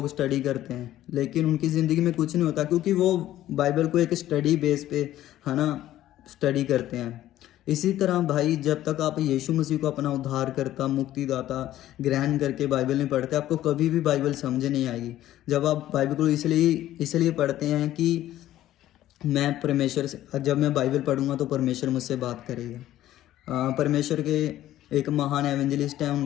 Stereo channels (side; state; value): right; quieter; 13.6 dB